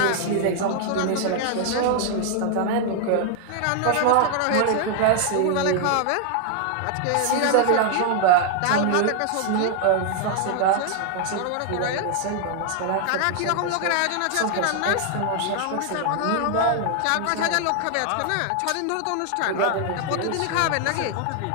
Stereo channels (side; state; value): both; different; correlation 0.00